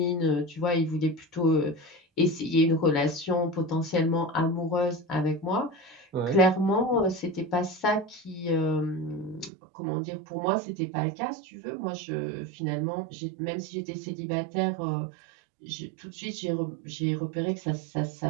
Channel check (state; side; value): drops out; left; at 9.5 s